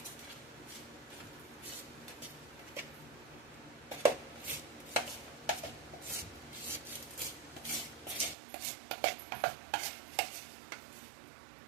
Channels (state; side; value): drops out; left; at 8.3 s